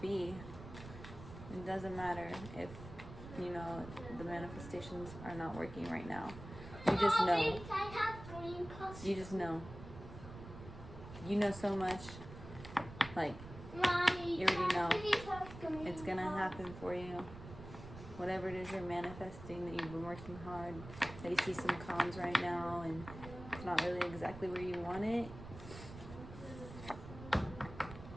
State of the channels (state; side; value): noise; right; rumble, 13 dB below the sound